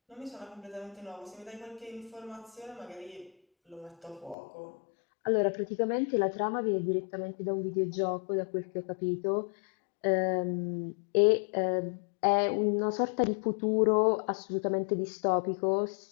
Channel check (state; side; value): drops out; right; at 4.4 s